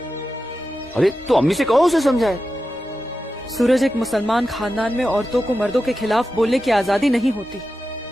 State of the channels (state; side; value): normal; both; correlation 0.91